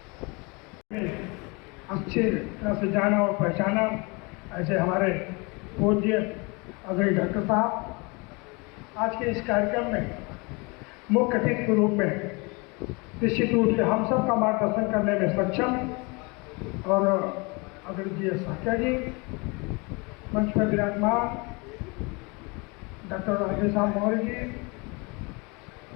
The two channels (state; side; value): quieter; right; 28.7 dB